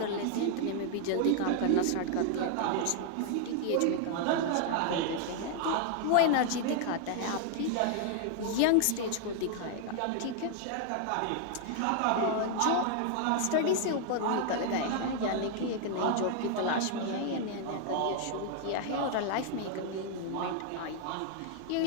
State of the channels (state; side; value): different; both; correlation 0.00